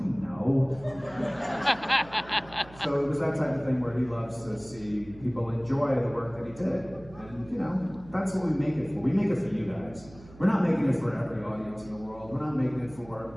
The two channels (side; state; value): right; noise; hum, 21 dB below the sound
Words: know. So it was that type of thing where he loves to see people enjoy the work that he did. And you know, that's what we make it for. We make it for you guys. We're not making it for every audience in the world. We're not making it